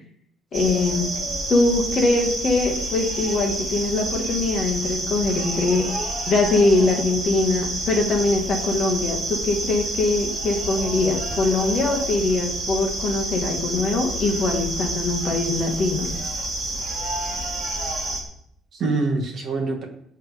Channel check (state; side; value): normal; both; correlation 0.67